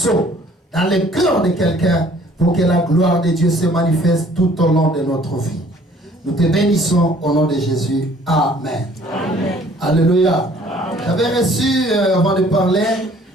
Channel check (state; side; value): normal; both; correlation 0.56